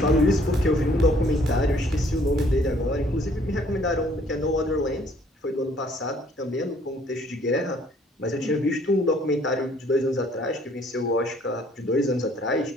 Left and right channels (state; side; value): normal; both; correlation 0.61